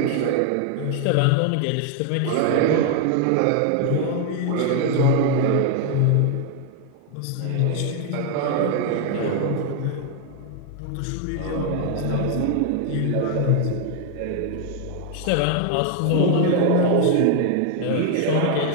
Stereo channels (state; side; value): different; both; correlation 0.00